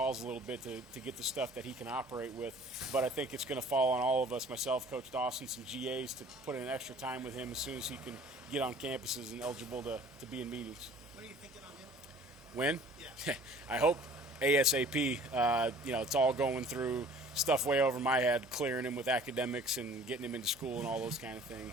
a little bit to get the stuff that he can operate with. But I think it's going to fall on all of us, myself, Coach Dawson, some GAs, to put in extra time with him as soon as he can get on campuses and eligible to be in meetings. What are you thinking on him? When? Yeah. I hope ASAP. It's all going through stuff way over my head, clearing him with academics and getting him into school and all those kind of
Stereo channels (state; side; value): normal; both; correlation 0.50